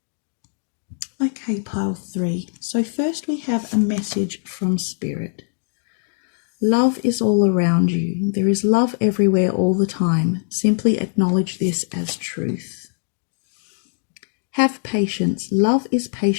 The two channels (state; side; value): silent; right; digital silence